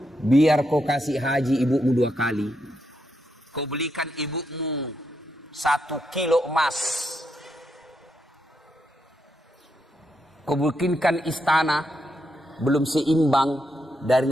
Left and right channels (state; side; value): normal; both; correlation 0.81